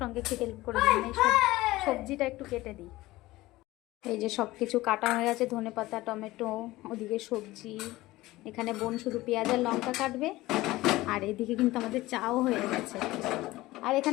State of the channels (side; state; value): right; quieter; 18.3 dB